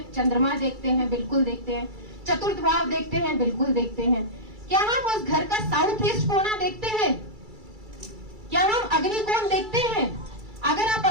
चंद्रमा देखते हैं, बिल्कुल देखते हैं, चतुर्थ भाव देखते हैं, बिल्कुल देखते हैं। क्या हम उस घर का साउथ ईस्ट कोना देखते हैं? क्या हम अग्नि कोण देखते हैं? अगर आप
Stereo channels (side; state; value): left; late; 2.3 ms